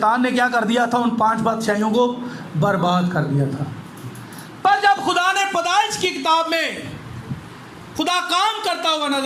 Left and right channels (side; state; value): both; identical; correlation 1.00